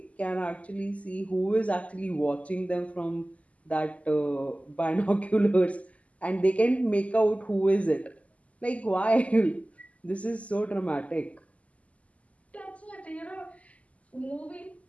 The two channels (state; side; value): late; right; 0.068 ms